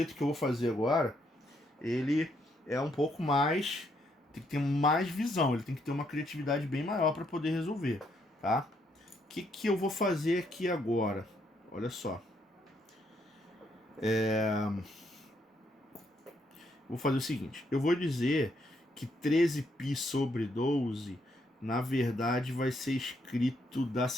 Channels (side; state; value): both; normal; correlation 0.74